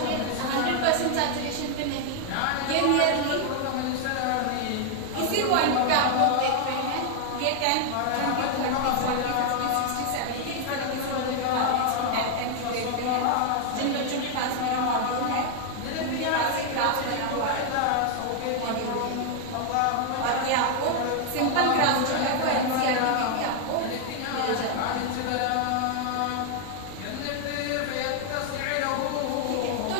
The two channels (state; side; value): different; both; correlation 0.00